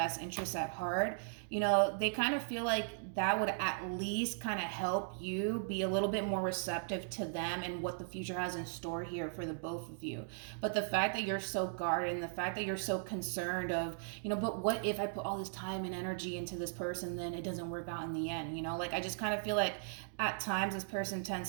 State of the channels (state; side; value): silent; left; digital silence